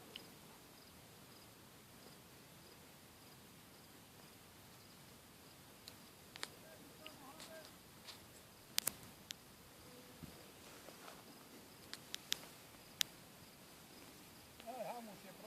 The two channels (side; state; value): both; identical; correlation 1.00